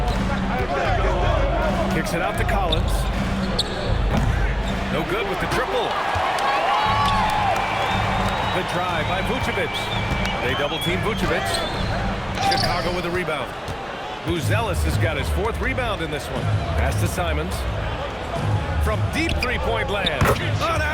Kicks it out to Collins. No good with the triple. Good drive by Vucevic. They double-team Vucevic. Chicago with a rebound. Buzelis has got his 4th rebound in this one. Pass to Simons. From deep three-point land. An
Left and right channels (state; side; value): identical; both; correlation 1.00